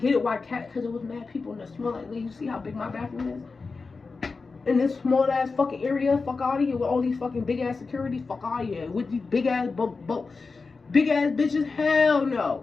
it why Kat, because it was mad people in the small, like, you see how big my bathroom is? In this small ass fucking area, fuck out of here with all these fucking big ass securities, fuck out of here with these big ass bitches. Hell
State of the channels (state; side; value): quieter; right; 4.3 dB